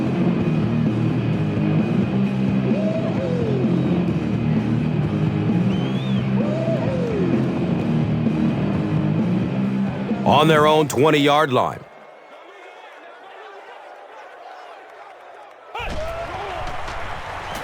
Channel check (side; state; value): both; identical; correlation 1.00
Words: On their own 20-yard line.